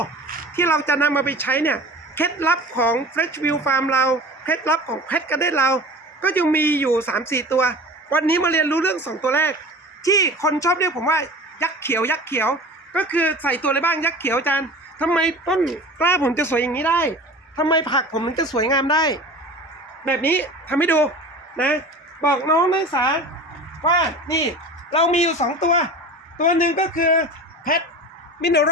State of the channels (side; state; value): both; normal; correlation 0.37